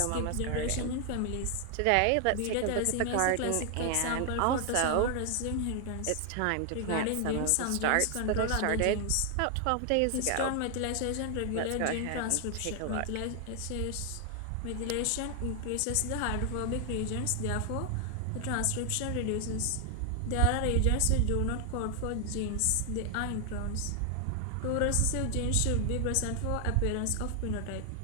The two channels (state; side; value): different; both; correlation 0.00